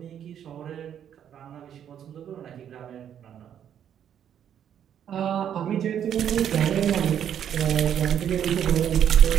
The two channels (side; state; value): left; quieter; 9.4 dB